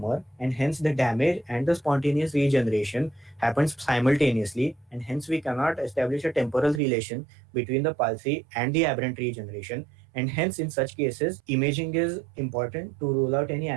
and hence the damage and the spontaneous regeneration happens simultaneously, and hence we cannot establish a temporal relation between the palsy and the aberrant regeneration, and hence in such cases, imaging is important to rule out any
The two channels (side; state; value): left; drops out; at 6.8 s